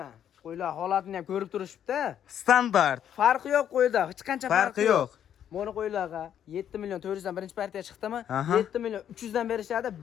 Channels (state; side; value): quieter; right; 9.7 dB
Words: Qo'ylar holatini ham ko'rib turishibdi. Standart. Farqi yo'q qo'yda, hech qancha farqi yo'q. Mana qo'ylarga 7 million 400 dan birinchi partiya chiqdimi? 7 million 300 dan berishadi.